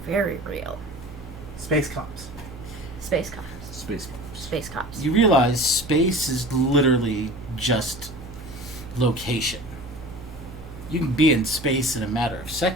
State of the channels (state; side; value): normal; both; correlation 0.39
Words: very real. Space cops. Space cops. Space Force. Space cops. You realize space is literally just location. You can be in space in a matter of